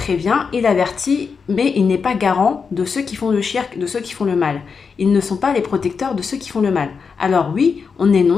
il avertit, mais il n'est pas garant de ceux qui font le shirk, de ceux qui font le mal. Ils ne sont pas les protecteurs de ceux qui font le mal. Alors oui, on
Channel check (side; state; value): right; quieter; 5.6 dB